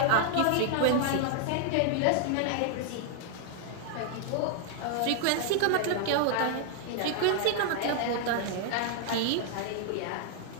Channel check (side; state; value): both; different; correlation 0.00